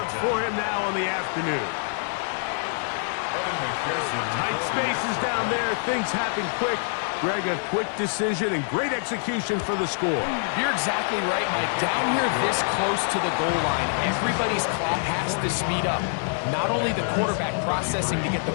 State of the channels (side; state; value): right; silent; 61 dB below the other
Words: for him now on the afternoon. Tight spaces down there. Things happen quick. Greg, a quick decision and great execution for the score. You're exactly right, Mike. Down here this close to the goal line, everybody's clock has to speed up. Not only the quarterback processing to get the